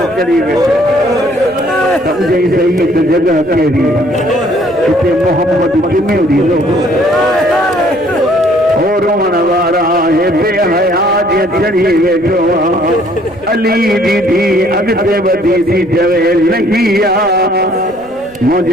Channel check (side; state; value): right; noise; rumble, 26 dB below the sound